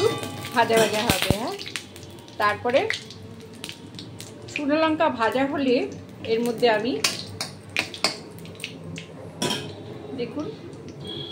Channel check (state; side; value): identical; both; correlation 1.00